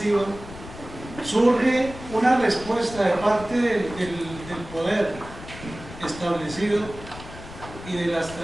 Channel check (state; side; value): noise; left; rumble, 14 dB below the sound